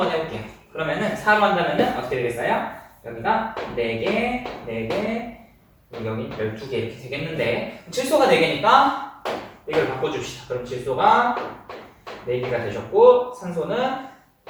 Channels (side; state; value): both; identical; correlation 1.00